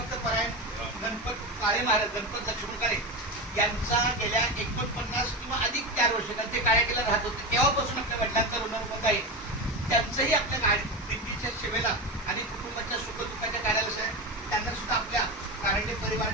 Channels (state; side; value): normal; both; correlation 0.20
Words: परायण गणपत काळे महाराज, गणपत लक्ष्मण काळे यांचा गेल्या 49 किंवा अधिक 4 वर्ष ते काळ्या केला राहत होते तेव्हापासून आपल्या वडिलांचा ऋणमत आहे. त्यांचंही आपल्या गाडी दिंडीच्या सेवेला आणि कुटुंबाच्या सुखदुःखाच्या कार्याला त्यांना सुद्धा आपल्या कारंडे